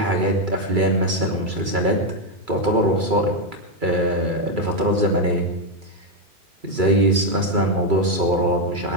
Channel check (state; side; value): late; left; 2.3 ms